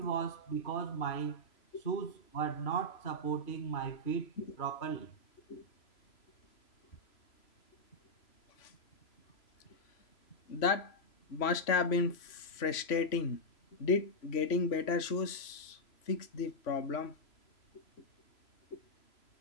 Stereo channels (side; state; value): right; late; 3.0 ms